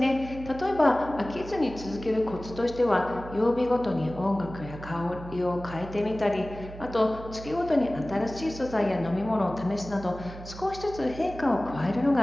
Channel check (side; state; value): right; noise; hum, 13 dB below the sound